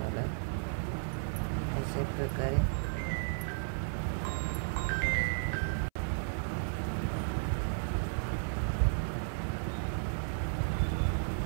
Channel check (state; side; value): silent; left; 55 dB below the other